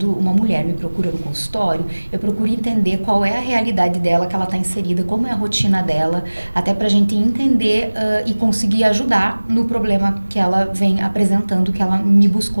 uma mulher me procura no consultório, eu procuro entender qual é a realidade dela, que ela está inserida, como é a rotina dela, até para a gente entender e conseguir ajudar no problema que ela vem apresentando, que ela me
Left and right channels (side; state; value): both; inverted; correlation -1.00